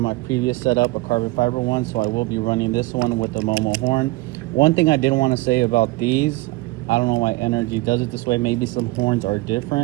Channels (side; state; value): left; quieter; 21.3 dB